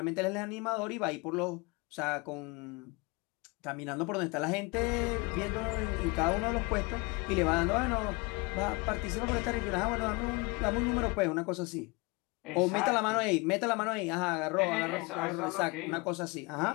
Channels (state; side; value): quieter; right; 27.1 dB